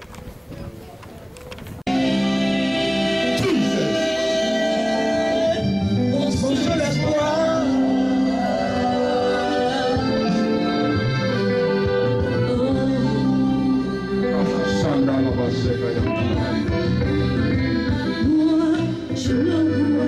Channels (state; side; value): identical; both; correlation 1.00